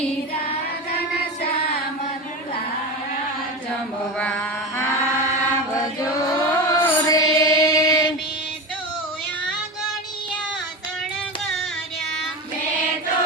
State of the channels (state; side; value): normal; both; correlation 0.24